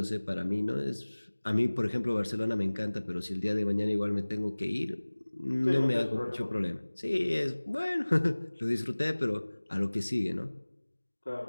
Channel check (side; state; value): both; inverted; correlation -1.00